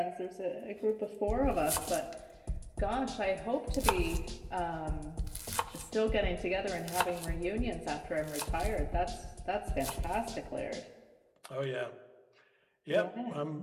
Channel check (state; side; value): identical; both; correlation 1.00